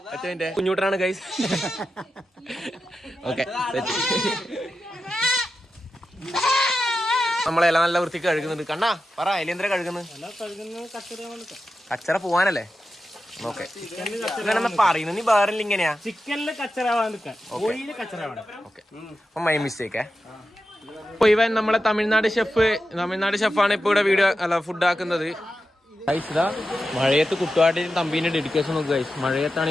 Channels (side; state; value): both; normal; correlation 0.91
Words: കുഞ്ഞൂട്ടനാണ് ഗൈസ്. ഓക്കെ നമ്മളെല്ലാം നല്ല വൃത്തിക്ക് കഴുകുന്നുണ്ട്. കണ്ണാ പറ, എലിയന്തര കഴുകുന്നത് കച്ചറ പോവാനല്ലേ. ഓക്കെ പറയുന്നു നീ വേറെ ഇങ്ങനെയാ. ചിക്കനില് കച്ചറ മൈ മിസ്റ്റേക്ക്. അപ്പൊ ഇവൻ നമ്മളെ തമിഴ്നാട് ഷെഫാണ് ഇപ്പൊ ഇവിടെ വീഡിയോ അല്ല ഫുഡ് ആക്കുന്നത്. ഇതാ മഴയത്ത് കുട്ടുവാട്ടിന് തമ്പീന്റെ ഡെഡിക്കേഷൻ നോക്കുക ഗൈസ്. മഴയത്താണ്